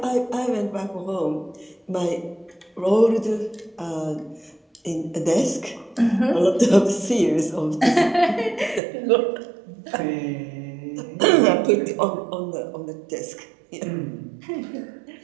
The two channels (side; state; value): left; drops out; at 8.8 s